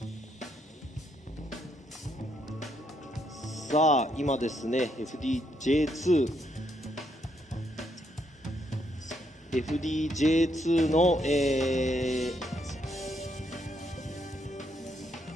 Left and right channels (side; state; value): both; normal; correlation 0.75